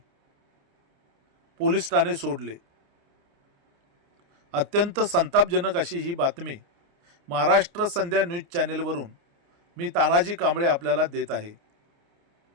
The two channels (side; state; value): left; late; 29 ms